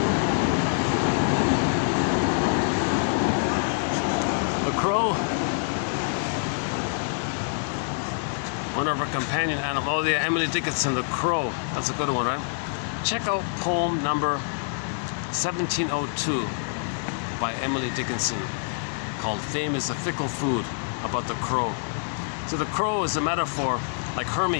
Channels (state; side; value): silent; right; digital silence